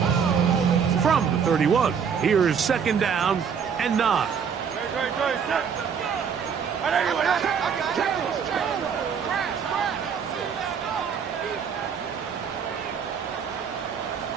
From the 31, here's 2nd down and 9.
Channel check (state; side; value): quieter; left; 6.9 dB